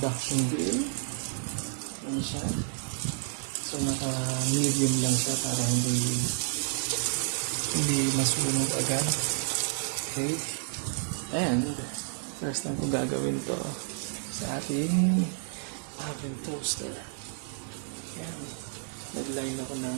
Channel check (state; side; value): silent; left; digital silence